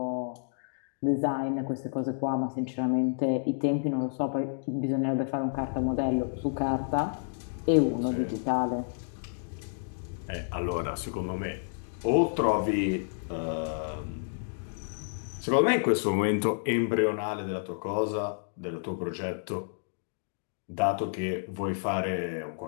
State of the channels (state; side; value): silent; right; digital silence